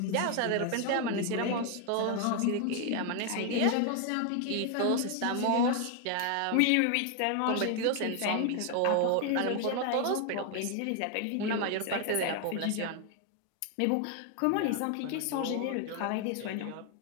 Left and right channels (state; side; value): different; both; correlation 0.00